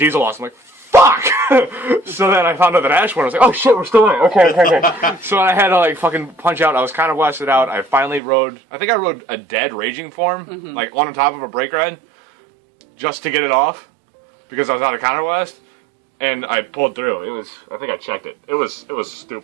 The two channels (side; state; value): left; drops out; at 8.2 s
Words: lost, I'm like, fuck! So then I found out that Ash won, I was like, oh shit, we're still in it, okay. So I had to like fucking punch out, I was kind of blasted out, I finally rode a dead Raging Form, like on top of a break ride, just to get it off, because I was out of counter blast. And I pulled through. I think I checked it. It was